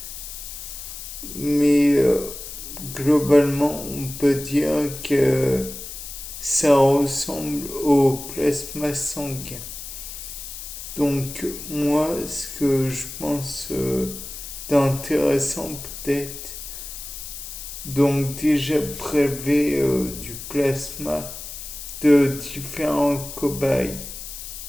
Mais globalement, on peut dire que ça ressemble au plasma sanguin. Donc moi, ce que je pense d'intéressant peut-être, donc déjà prélever du plasma de différents cobayes,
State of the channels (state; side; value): noise; left; hiss, 10 dB below the sound